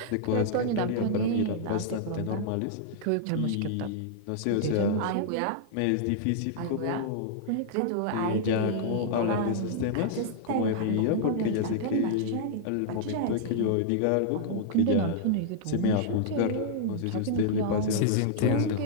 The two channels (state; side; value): different; both; correlation -0.01